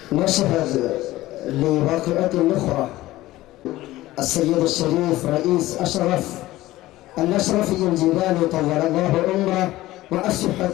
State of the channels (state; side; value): quieter; right; 16.8 dB